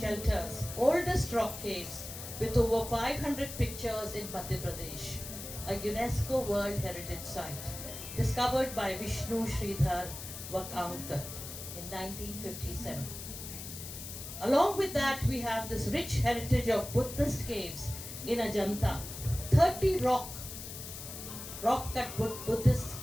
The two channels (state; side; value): noise; left; hiss, 10 dB below the sound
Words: oldest rock caves with over 500 pictures in Madhya Pradesh, a UNESCO World Heritage Site, discovered by Vishnu Sridhar Vakaunkar in 1957. Along with that, we have this rich heritage of Buddhist caves in Ajanta, 30 rock-cut Buddhist